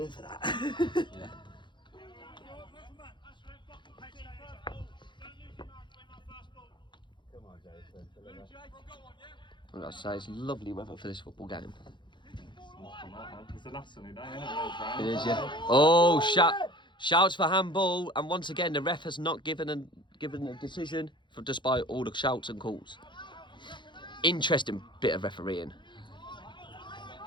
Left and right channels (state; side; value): late; right; 0.23 ms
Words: for that. Yeah. Well, I'd say it's lovely weather for this football game. It's the last sunny day, isn't it? It is, yeah. Oh, shouts for handball, and once again the ref has not given a decision despite all the shouts and calls. Interesting bit of refereeing.